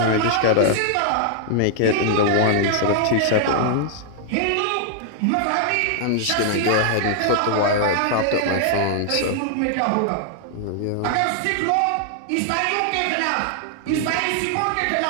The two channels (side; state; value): both; different; correlation -0.01